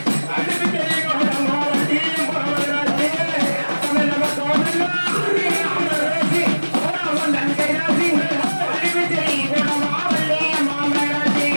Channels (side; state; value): both; inverted; correlation -1.00